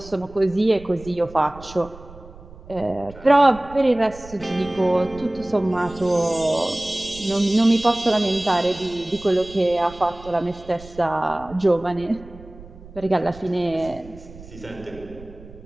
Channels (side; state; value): right; noise; rumble, 19 dB below the sound